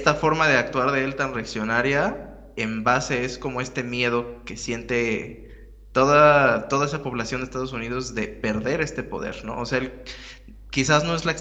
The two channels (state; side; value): identical; both; correlation 1.00